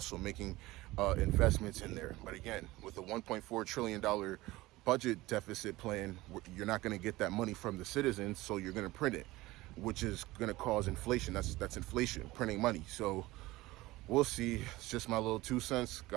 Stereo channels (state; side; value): quieter; left; 19.0 dB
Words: making investments in there. But again, with a $1.4 trillion budget deficit plan, you're not going to get that money from the citizens. So you're going to print it, which is going to cause inflation. That's inflation, printing money. So we'll see. It's just my little 2 cents.